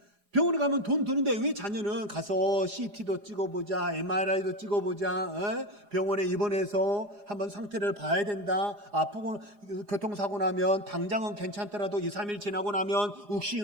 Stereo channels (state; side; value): late; left; 4.9 ms